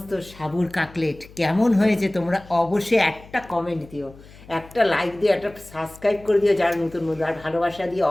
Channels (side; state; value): left; noise; hum, 21 dB below the sound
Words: সাবুর কাকলেট। কেমন হয়েছে তোমরা অবশ্যই একটা কমেন্ট দিও, একটা লাইক দিও, একটা সাবস্ক্রাইব করে দিও যারা নতুন বন্ধু, আর ভালোবাসা দিয়ে